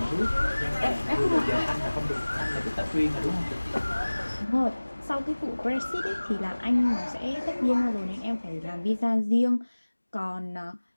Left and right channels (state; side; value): inverted; both; correlation -1.00